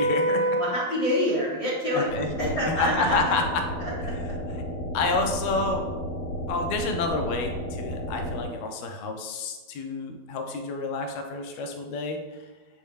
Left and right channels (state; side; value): late; right; 12 ms